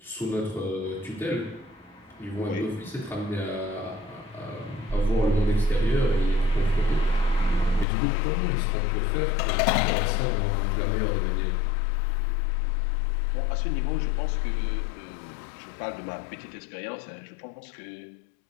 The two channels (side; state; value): right; drops out; at 7.9 s